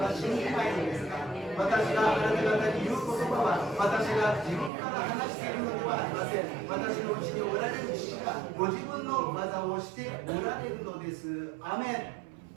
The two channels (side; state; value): left; drops out; at 4.7 s